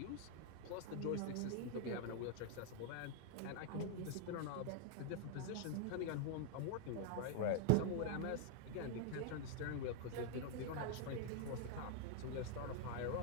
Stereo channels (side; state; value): both; different; correlation 0.00